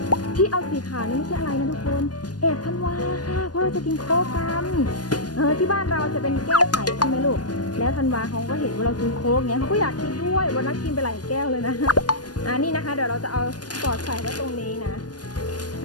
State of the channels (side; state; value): right; late; 0.69 ms